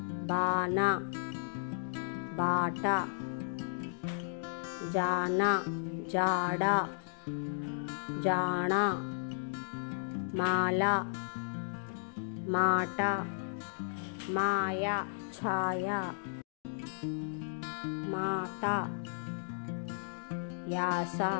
బాణ, బాట, జాన, జాడ, జాణ, మాల, మాట, మాయ, ఛాయ, మాత, యాస,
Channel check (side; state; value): right; silent; digital silence